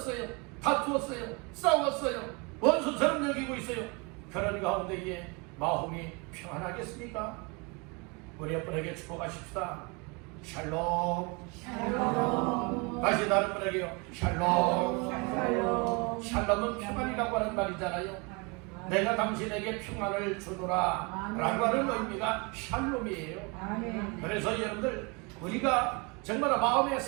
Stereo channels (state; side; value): quieter; left; 29.8 dB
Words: 다투었어요, 싸웠어요, 원수처럼 여기고 있어요. 그런 가운데에 마음이 평안하겠습니까? 우리 여러분에게 축복하십시다. 샬롬. 다시 다른 분에게요. 샬롬. 샬롬은 평안이라고 하는 말이잖아요. 내가 당신에게 평안을 주노라 라고 하는 의미가 샬롬이에요. 그래서 여러분들 우리가 정말 마음에